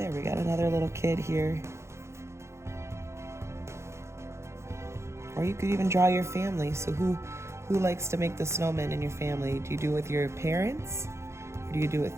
we got another little kid here. Or you could even draw your family. So who likes to make the snowman in your family? Do you do it with your parents? Or do you do it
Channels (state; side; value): late; left; 0.13 ms